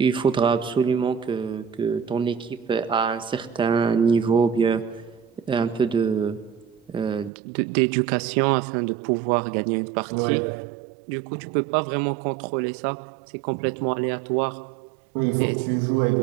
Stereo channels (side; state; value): left; drops out; at 7.3 s